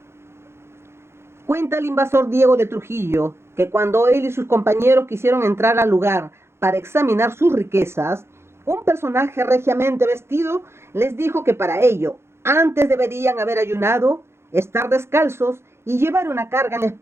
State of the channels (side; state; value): left; late; 0.12 ms